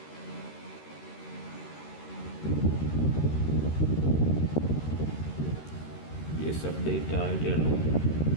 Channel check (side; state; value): right; late; 13 ms